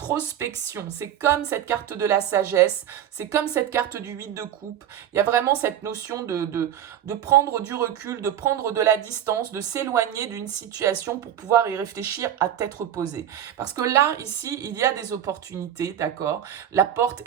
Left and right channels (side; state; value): left; quieter; 10.4 dB